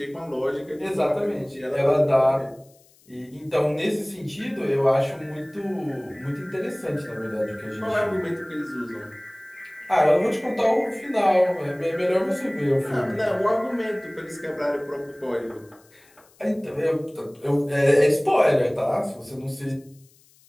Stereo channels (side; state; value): left; noise; hiss, 30 dB below the sound